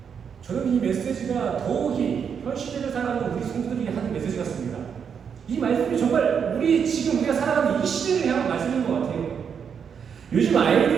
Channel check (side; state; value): left; quieter; 7.1 dB